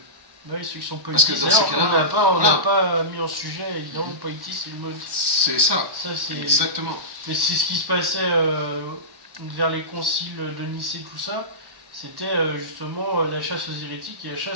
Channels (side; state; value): left; late; 1.1 ms